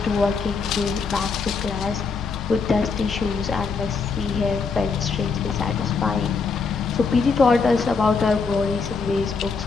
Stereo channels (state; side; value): quieter; right; 4.9 dB